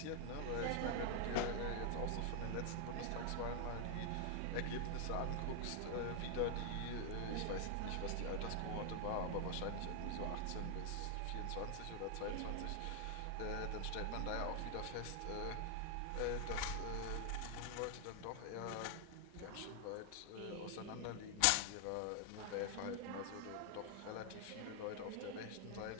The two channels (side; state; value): both; different; correlation 0.00